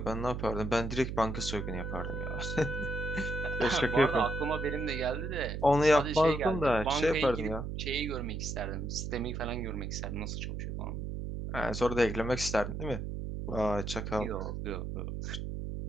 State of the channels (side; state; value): right; noise; hum, 4 dB below the sound